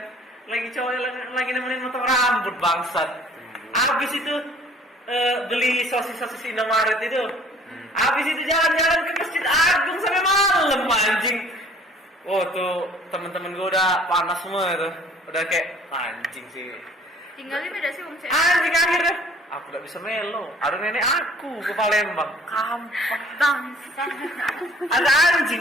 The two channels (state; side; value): normal; both; correlation 0.54